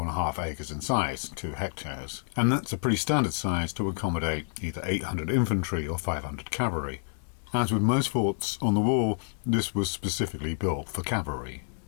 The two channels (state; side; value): silent; right; digital silence